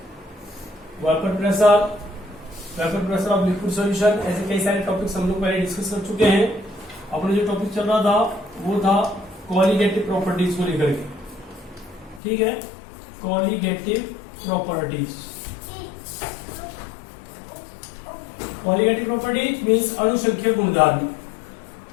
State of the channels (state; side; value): drops out; right; at 12.2 s